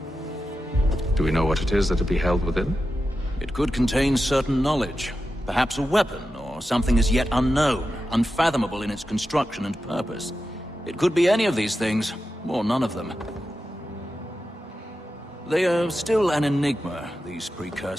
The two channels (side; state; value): both; normal; correlation 0.91